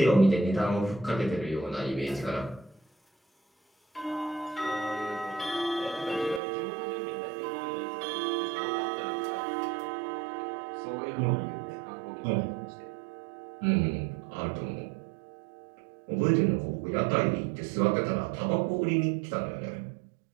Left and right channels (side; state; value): left; drops out; at 6.4 s